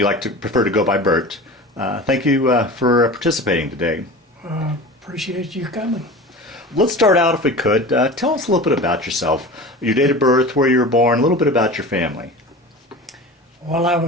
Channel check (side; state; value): both; normal; correlation 0.34